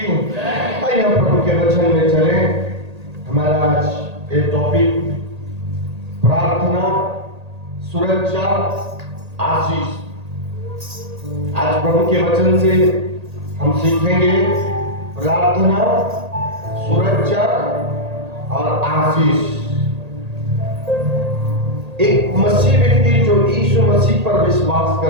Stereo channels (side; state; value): left; late; 1.8 ms